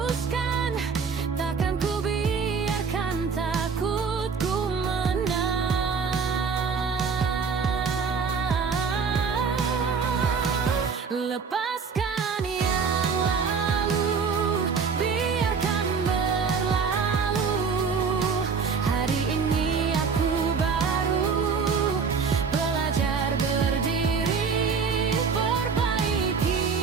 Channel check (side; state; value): left; quieter; 5.6 dB